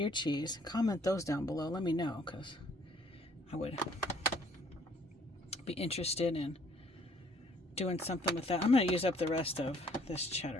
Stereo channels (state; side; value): normal; both; correlation 0.61